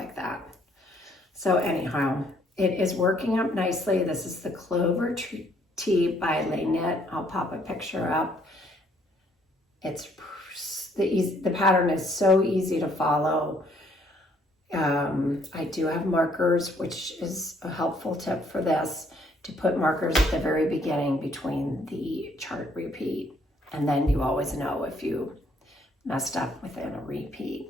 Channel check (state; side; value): normal; both; correlation 0.65